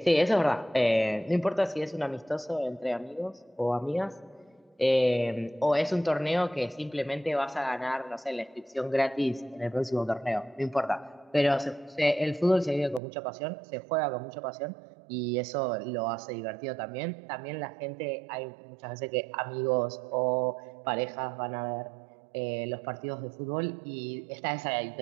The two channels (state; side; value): drops out; left; at 13.0 s